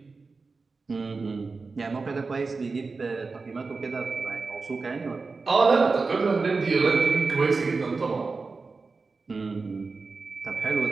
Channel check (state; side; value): quieter; left; 4.2 dB